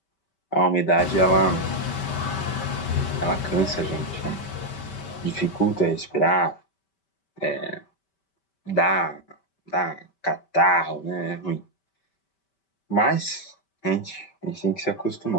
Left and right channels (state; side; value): late; right; 5.1 ms